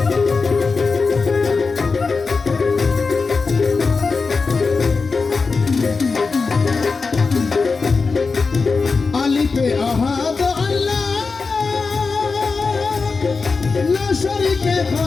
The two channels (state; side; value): quieter; right; 4.5 dB